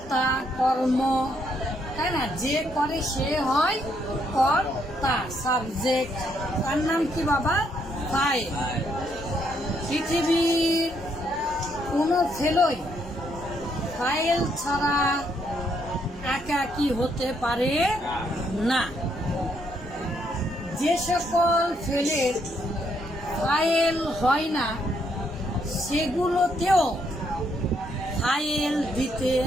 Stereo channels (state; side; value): normal; both; correlation 0.73